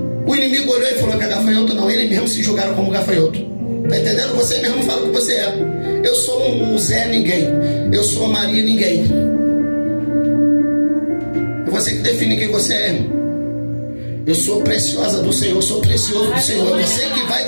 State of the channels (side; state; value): both; inverted; correlation -1.00